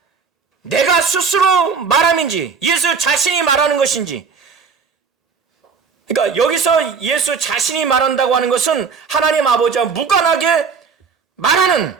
내가 스스로 말함인지, 예수 자신이 말하는 것인지. 그러니까 여기서 예수 자신이 말한다고 하는 것은 하나님 아버지와 무관하게 말하는,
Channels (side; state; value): left; quieter; 5.7 dB